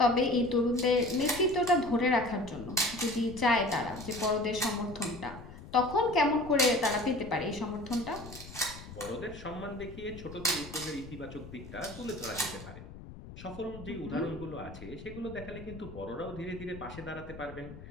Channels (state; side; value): noise; left; rumble, 14 dB below the sound